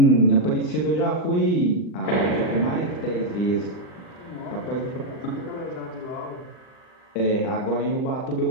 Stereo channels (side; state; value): right; late; 39 ms